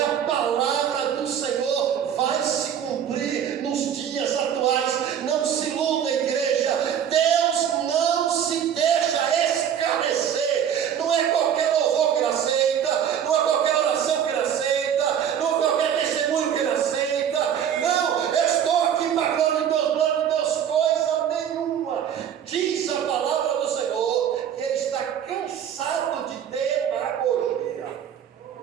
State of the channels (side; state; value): left; quieter; 9.0 dB